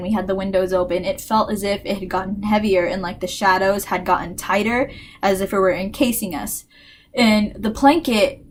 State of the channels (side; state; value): both; identical; correlation 1.00